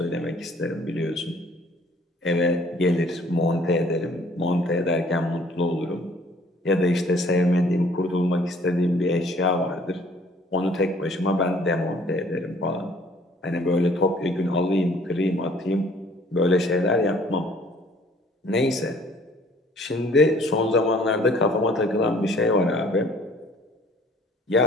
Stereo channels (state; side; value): normal; both; correlation 0.57